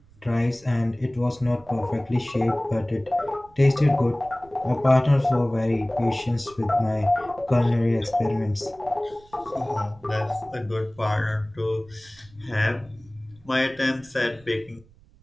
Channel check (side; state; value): right; noise; rumble, 27 dB below the sound